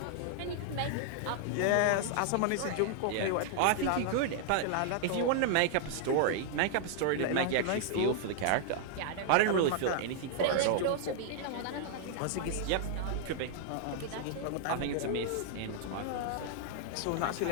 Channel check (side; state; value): both; different; correlation -0.01